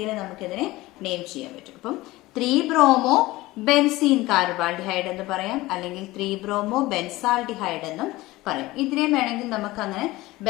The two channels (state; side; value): quieter; right; 19.0 dB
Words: നമുക്കിതിനെ നെയിം ചെയ്യാൻ പറ്റും. അപ്പം 3 ബ്രോമോ ബെൻസീൻ കാർബാൾഡിഹൈഡ് എന്ന് പറയാം, അല്ലെങ്കിൽ 3 ബ്രോമോ ബെൻസാൾഡിഹൈഡ് എന്നും പറയും. ഇതിനെ വേണമെങ്കിൽ നമുക്ക് അങ്ങനെ